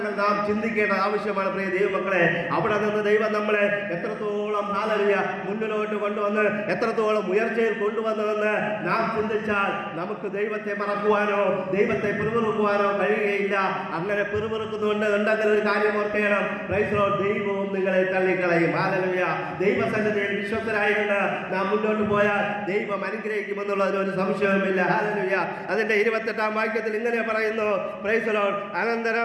നാം ചിന്തിക്കേണ്ട ആവശ്യമാണ് പ്രിയ ദൈവമക്കളെ. അവിടെ നിന്ന് ദൈവം നമ്മളെ എത്രത്തോളം ഹല്ലേലൂയ മുന്നിലോട്ട് കൊണ്ടുവന്ന് എത്രത്തോളം ഉയർച്ചയിൽ കൊണ്ടുവന്നതെന്ന് നാം ചിന്തിച്ചാൽ നമുക്ക് ദൈവത്തെ മറക്കുവാനോ ദൈവത്തെ പിറുപിറുക്കുവാനോ കഴിയുകയില്ല. അങ്ങനെ പിറുപിറുക്കുന്നുണ്ട് ഉണ്ടെങ്കിൽ ഒരു കാര്യം ഓർക്കണം, പ്രൈസ് ദി ലോർഡ് ദൈവവും നിങ്ങളെ തള്ളിക്കളയും. ഹല്ലേലൂയ ദൈവസന്നിധിയിൽ വിശ്വസ്തരായിട്ട് നാം മുന്നോട്ട് പോയാൽ ദൈവം അനുഗ്രഹിക്കുമെന്നുള്ളതിന് ഒരു സംശയവുമില്ല. ഹല്ലേലൂയ അതിന്റെ 28-ാം വാക്യത്തിൽ ഇങ്ങനെ പറയുന്നു, പ്രൈസ് ദി ലോർഡ്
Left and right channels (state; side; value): identical; both; correlation 1.00